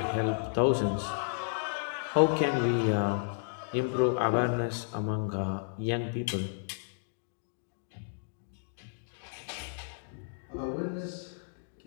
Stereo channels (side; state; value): right; silent; digital silence